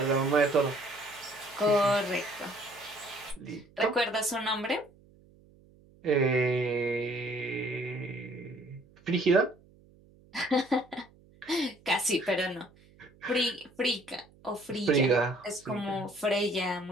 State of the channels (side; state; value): right; noise; hum, 27 dB below the sound